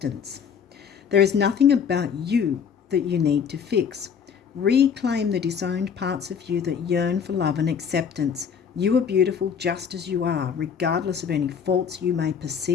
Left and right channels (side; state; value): right; quieter; 7.1 dB